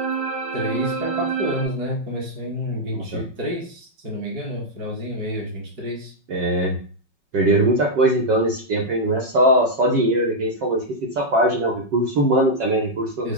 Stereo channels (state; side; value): late; left; 5.4 ms